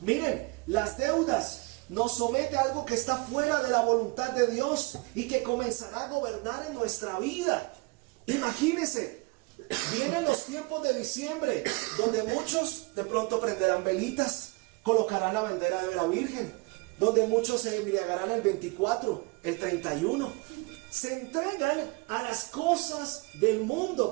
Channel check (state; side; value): quieter; left; 27.3 dB